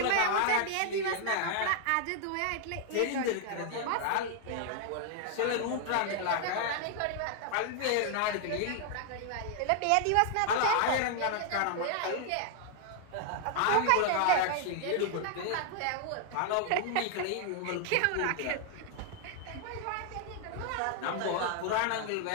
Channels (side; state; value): both; different; correlation 0.00